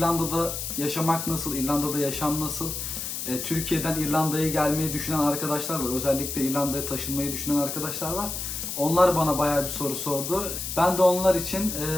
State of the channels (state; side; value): noise; left; hiss, 5 dB below the sound